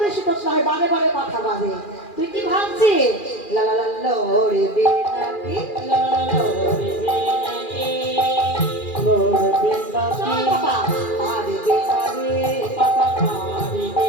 বেশি তোতলা হয়, বারে বারে কথা বাজে। তুই কি ভাবছিস? লা লা লা লড়বে না কি, লা লা লা লড়বে না কি, লড়বে না কি, বাবা পারবে না রে, বাবা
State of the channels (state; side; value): late; right; 2.4 ms